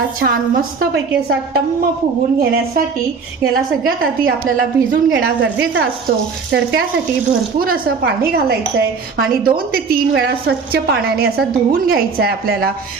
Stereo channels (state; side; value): quieter; left; 5.1 dB